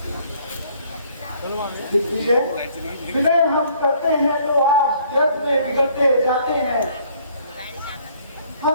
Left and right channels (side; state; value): both; inverted; correlation -0.61